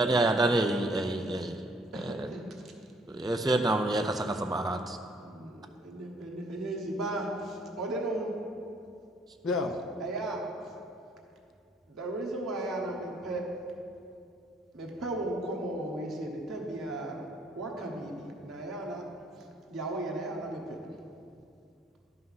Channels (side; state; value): both; normal; correlation 0.63